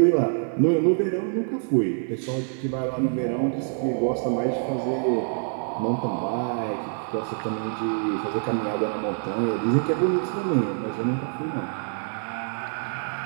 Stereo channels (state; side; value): silent; left; 60 dB below the other